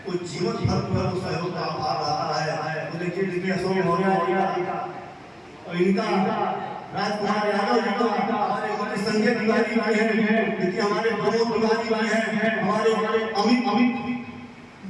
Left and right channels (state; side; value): identical; both; correlation 1.00